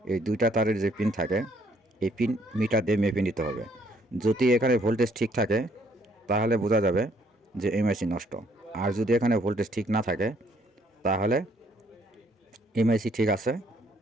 এই দুইটা তারের যে পিন থাকে এই পিন মিটার দিয়ে মেপে নিতে হবে। যদি এখানে ভোল্টেজ ঠিক থাকে তাহলে বোঝা যাবে যে এমআইসি নষ্ট, আর যদি এখানে ভোল্টেজ ঠিক না থাকে তাহলে এমআইসি ঠিক আছে,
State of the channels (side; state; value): both; normal; correlation 0.66